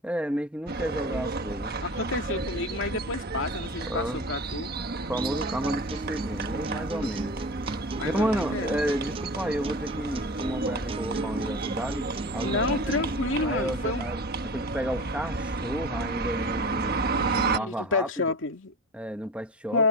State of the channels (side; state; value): both; normal; correlation 0.33